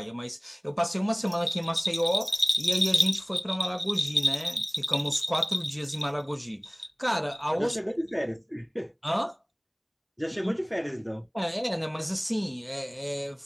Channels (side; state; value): both; identical; correlation 1.00